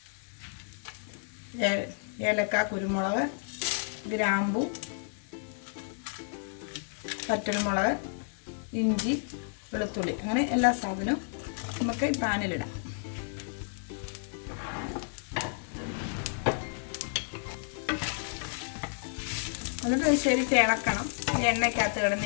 ഏലക്ക, കുരുമുളക്, ഗ്രാമ്പു, വറ്റൽമുളക്, ഇഞ്ചി, വെളുത്തുള്ളി, അങ്ങനെ എല്ലാ സാധനവും നമുക്ക് ഈ പാനിലിടാം. എന്നിട്ട് ശരിക്ക് ഇളക്കണം. എണ്ണയ്ക്കകത്ത്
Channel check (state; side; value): silent; right; digital silence